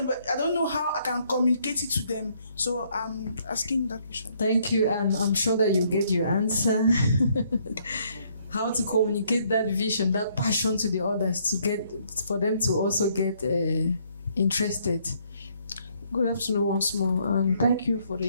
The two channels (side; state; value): both; inverted; correlation -0.68